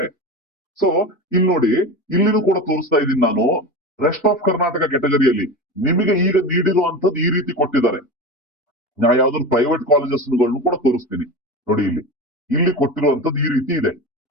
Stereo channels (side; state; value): both; normal; correlation 0.27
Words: ಸೊ ಇಲ್ಲಿ ನೋಡಿ, ಇಲ್ಲಿನೂ ಕೂಡ ತೋರಿಸ್ತಾ ಇದ್ದೀನಿ ನಾನು. ರೆಸ್ಟ್ ಆಫ್ ಕರ್ನಾಟಕ ಕೆಟಗರಿಯಲ್ಲಿ ನಿಮಗೆ ಈಗ ನೀಡಿರುವಂತದ್ದು ಈ ರೀತಿ ಕೊಟ್ಟಿದ್ದಾರೆ. ನಾ ಯಾವ್ದಾದ್ರು ಪ್ರೈವೇಟ್ ಕಾಲೇಜಸ್ ಕೂಡ ತೋರಿಸ್ತೀನಿ ನೋಡಿ. ಇಲ್ಲಿ ಕೊಟ್ಟಿರುವಂತದ್ದು ಈ ರೀತಿ ಇದೆ,